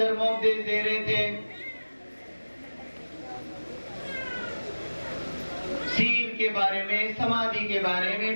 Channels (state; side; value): inverted; both; correlation -1.00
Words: दे रहे थे, सील के बारे में, समाधि के बारे